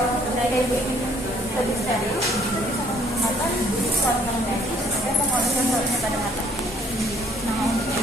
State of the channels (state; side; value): normal; both; correlation 0.63